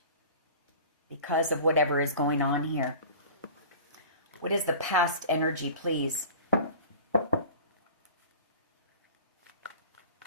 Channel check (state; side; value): inverted; both; correlation -0.40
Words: because of whatever is going on here. What is the past energy, please?